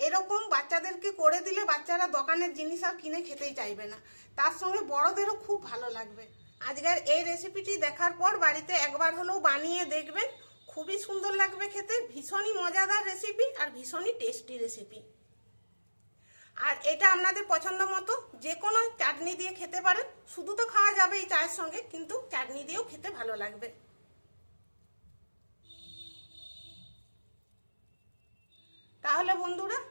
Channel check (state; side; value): inverted; both; correlation -1.00